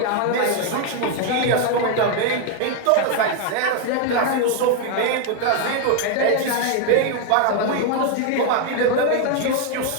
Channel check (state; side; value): different; both; correlation 0.01